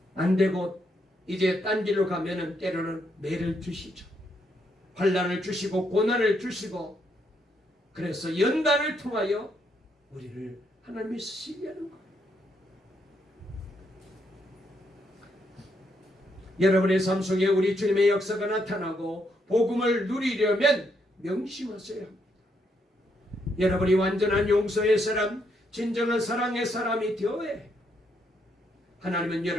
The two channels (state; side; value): normal; both; correlation 0.76